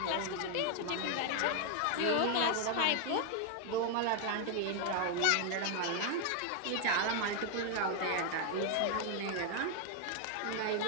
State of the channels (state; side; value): different; both; correlation 0.00